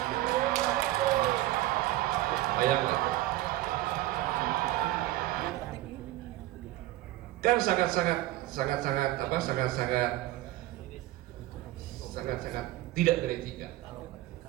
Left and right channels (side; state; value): left; quieter; 16.6 dB